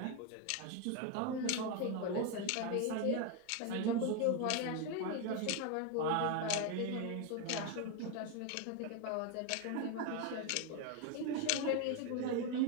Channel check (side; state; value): both; different; correlation 0.02